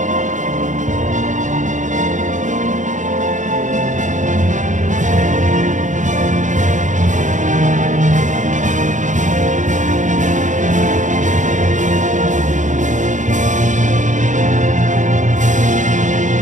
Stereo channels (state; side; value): late; left; 0.36 ms